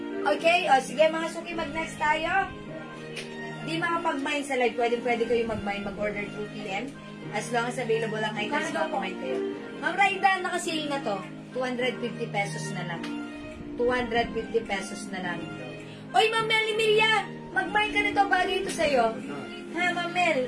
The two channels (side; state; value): both; identical; correlation 1.00